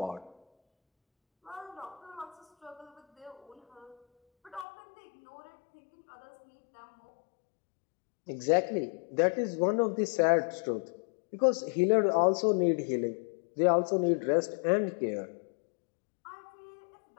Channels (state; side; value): drops out; right; at 4.7 s